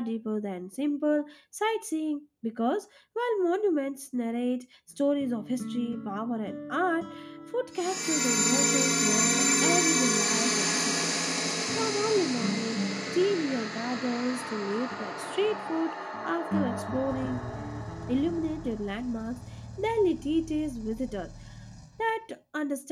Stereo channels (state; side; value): identical; both; correlation 1.00